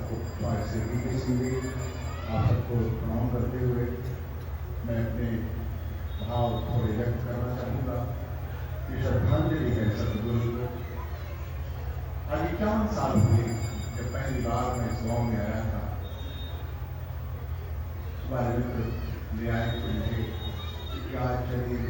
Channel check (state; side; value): identical; both; correlation 1.00